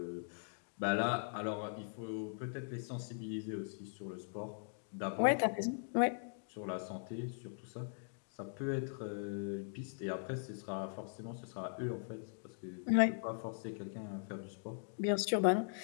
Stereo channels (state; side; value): silent; right; digital silence